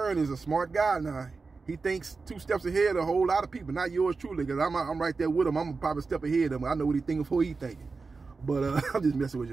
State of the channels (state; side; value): quieter; left; 4.3 dB